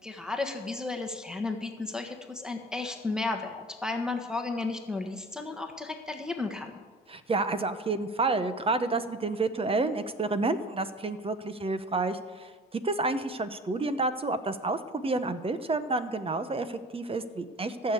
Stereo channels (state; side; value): normal; both; correlation 0.43